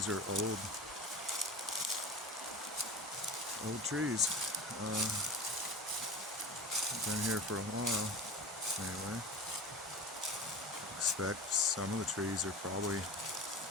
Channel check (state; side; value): normal; both; correlation 0.33